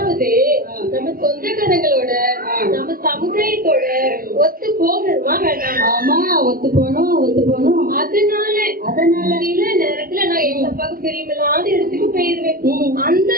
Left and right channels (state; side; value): late; left; 0.42 ms